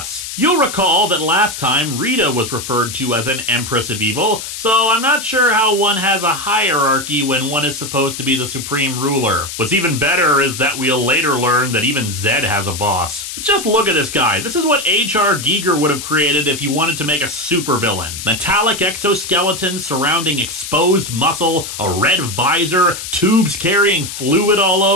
You'll recall that last time Rita was referred to as an Empress of Evil, so I'm not sure how one has a hierarchy when one is supposed to be the supreme ruler. What's even better is that we'll later learn that even Zed has a boss. Just look at this guy. This is what H.R. Giger would have created if he wanted to make a supervillain. Metallic exoskeleton surrounding exposed muscle, a red visor, tubes carrying fluid all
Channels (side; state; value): left; noise; hiss, 8 dB below the sound